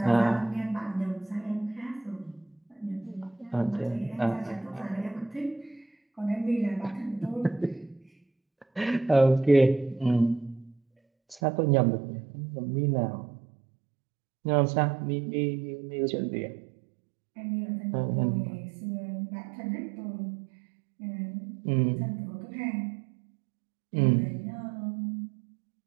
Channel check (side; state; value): left; drops out; at 11.4 s